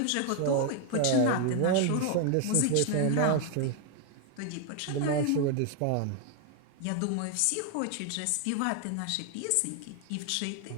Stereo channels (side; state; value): both; different; correlation 0.01